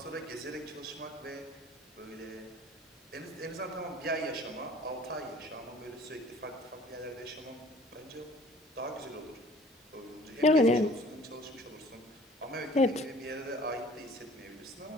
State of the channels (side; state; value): both; normal; correlation 0.50